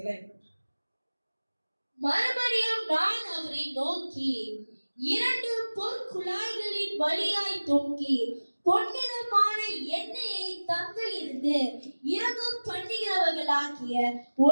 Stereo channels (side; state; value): both; inverted; correlation -1.00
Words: மறுபடியும் நான் அவரை நோக்கி 2 பொற்குழாய்களின் வழியாய் தொங்கி பொன்னிறமான எண்ணெயை தங்களிலிருந்து இறங்க பண்ணுகிறவர்களாகிய